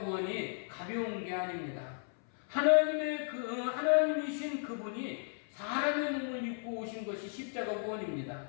가벼운 게 아닙니다. 하나님이신 그분이 사람의 몸을 입고 오신 것이 십자가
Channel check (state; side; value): silent; right; 55 dB below the other